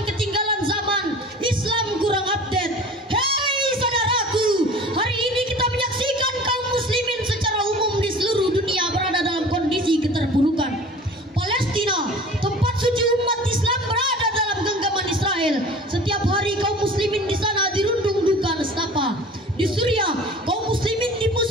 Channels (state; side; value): normal; both; correlation 0.42